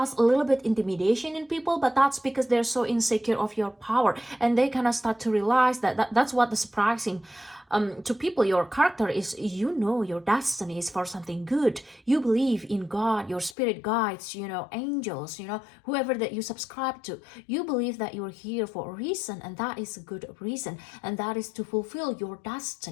a little bit intimidation in people, but that's because they're so insecure of your power, and they kind of start to realize that's what the surprising to people. Your character is, your destiny is for something good. You believe in God, your spirit guides, angels, whoever that you subscribe to. You believe that you're here for a reason, and that is a good reason, and that is to fulfill your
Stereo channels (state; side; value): drops out; right; at 13.6 s